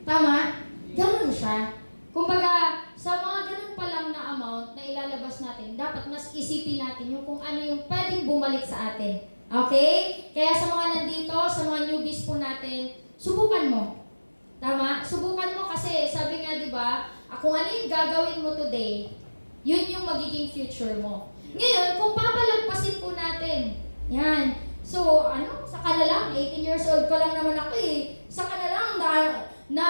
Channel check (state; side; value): inverted; both; correlation -1.00